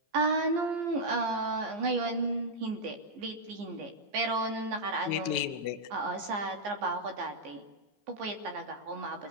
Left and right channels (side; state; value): left; late; 15 ms